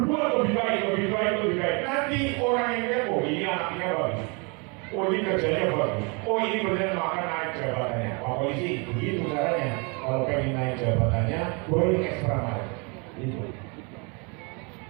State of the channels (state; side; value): quieter; left; 32.1 dB